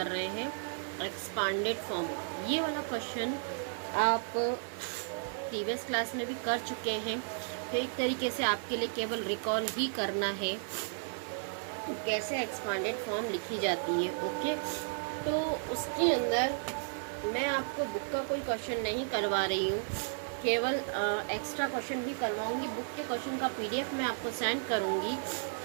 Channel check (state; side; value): silent; left; 55 dB below the other